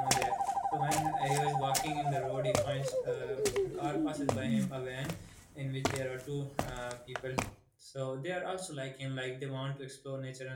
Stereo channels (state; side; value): identical; both; correlation 1.00